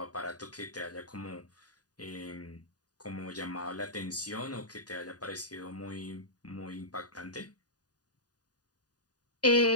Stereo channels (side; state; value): right; late; 0.68 ms